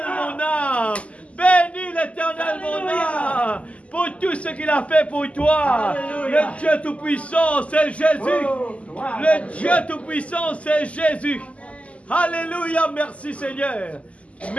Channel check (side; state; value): right; late; 0.064 ms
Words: mon âme. Bénis l'Éternel, mon âme. Pour tout ce qu'il a fait pour toi. Le Dieu Tout-Puissant, c'est Jésus. Le Dieu Tout-Puissant, c'est Jésus. Alléluia, merci Seigneur.